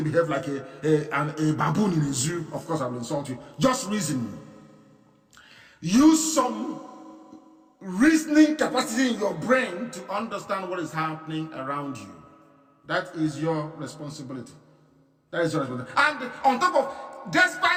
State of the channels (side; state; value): both; identical; correlation 1.00